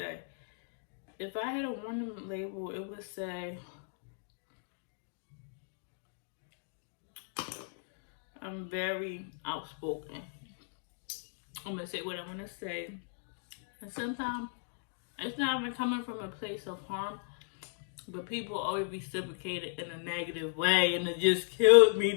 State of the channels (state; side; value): silent; right; digital silence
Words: If I had a warning label, it would say, I'm very outspoken. I'm going to say what I'm going to say. And sometimes it's not even coming from a place of harm, but people always reciprocate it in a negative way, and it just kills me